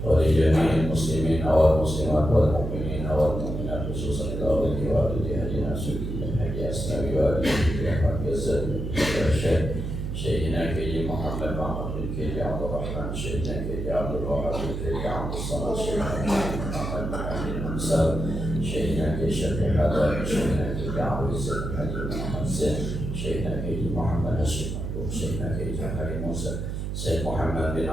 wa li jami'il muslimin wal muslimat wal mu'minin wal mu'minat khususan ila wali walidi hajina sunnah haji asnawi wa alihi wa sahbihi Syekhina Kiai Muhammad Mahmud bin Kiai Abdul Rahman, Syekhina Kiai Abdul Wahab bin Kiai Abdul Samad, Syekhina Muhammad bin Hamzah, Syekhina Kiai Syafiq Haddad, Syekhina Kiai Abdul Izzat Haji Muhammad Zain, Syekhina Kiai Muhammad Hashim Abdul, Syekhina Kiai Jafari Musa, Syekh Muhammad bin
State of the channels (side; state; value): right; noise; hum, 4 dB below the sound